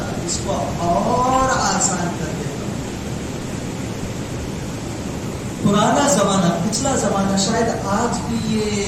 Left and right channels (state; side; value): identical; both; correlation 1.00